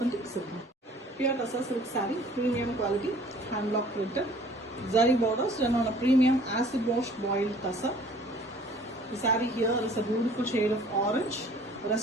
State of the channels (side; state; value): both; normal; correlation 0.52